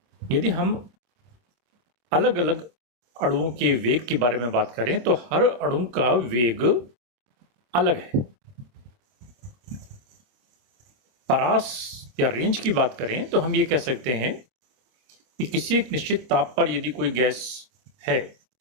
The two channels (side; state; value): left; late; 25 ms